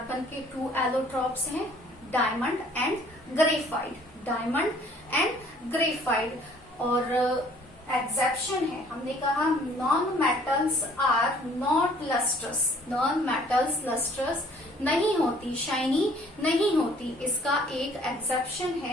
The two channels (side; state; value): both; normal; correlation 0.57